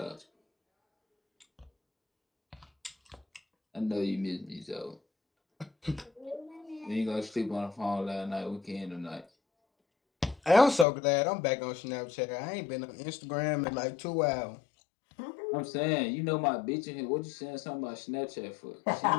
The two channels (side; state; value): right; drops out; at 10.9 s